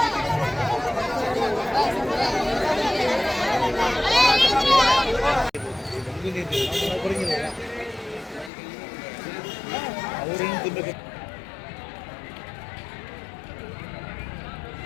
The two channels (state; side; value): drops out; right; at 8.5 s